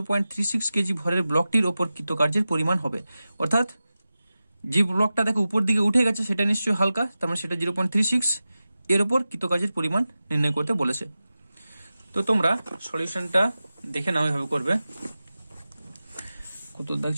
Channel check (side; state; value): both; inverted; correlation -0.94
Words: কেজি ভরের ব্লকটির ওপর কৃতকার্যের পরিমাণ হবে। অর্থাৎ যে ব্লকটা দেখো উপর দিকে উঠে গেছে সেটা নিশ্চয়ই হালকা, তার মানে সেটা 0.36, এর ওপর কৃতকার্যের পরিমাণ নির্ণয় করতে বলেছে। তো তোমরা সলিউশনটা দেখে নাও, এভাবে করবে। কত দাগ